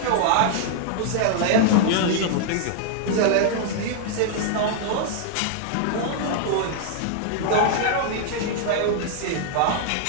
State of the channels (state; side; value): different; both; correlation 0.00